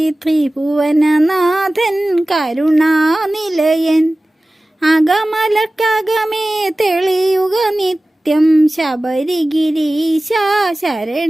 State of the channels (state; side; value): normal; both; correlation 0.97